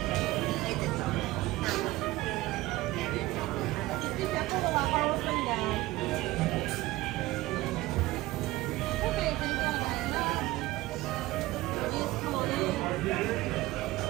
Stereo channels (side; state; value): left; quieter; 18.4 dB